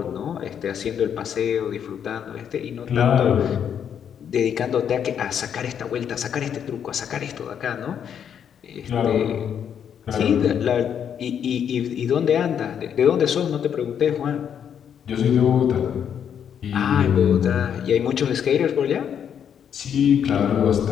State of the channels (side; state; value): right; quieter; 8.4 dB